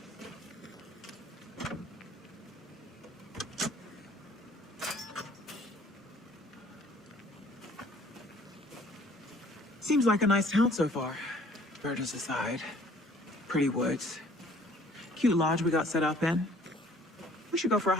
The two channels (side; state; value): both; normal; correlation 0.56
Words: Seems like a nice town so far. Murders aside. Pretty woods. Cute lodge we got set up in. We should go for a